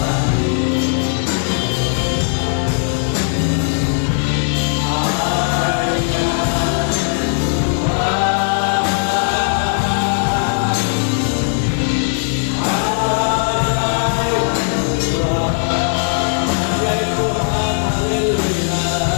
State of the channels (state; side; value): silent; right; digital silence